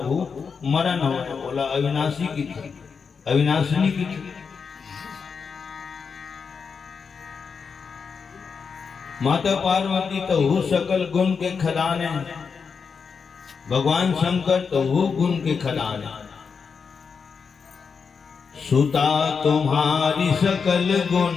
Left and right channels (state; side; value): quieter; right; 5.7 dB